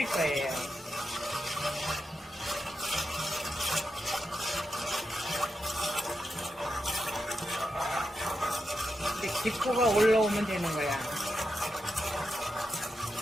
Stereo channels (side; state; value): both; normal; correlation 0.87